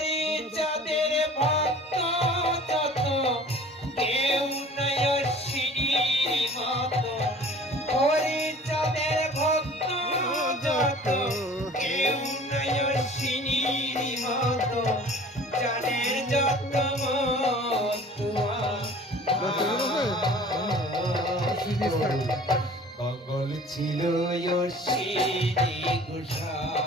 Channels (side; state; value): both; normal; correlation 0.46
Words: চাঁদের ভক্ত যত কেউ নাই অশ্বিনীর মতো হরি চাঁদের ভক্ত যত কেউ নাই অশ্বিনীর মতো জানের যত কমল ছিল অশ্বিনী